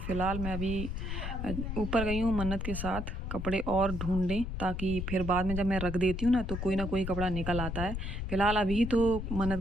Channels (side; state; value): left; noise; rumble, 4 dB below the sound